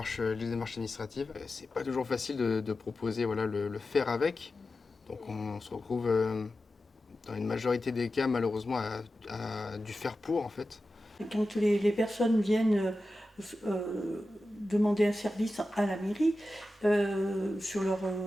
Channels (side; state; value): both; normal; correlation 0.93